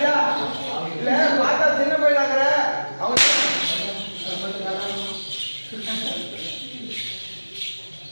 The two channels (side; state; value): both; inverted; correlation -1.00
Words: இல்ல பார்த்தா சின்ன பையனாங்கிற அவன்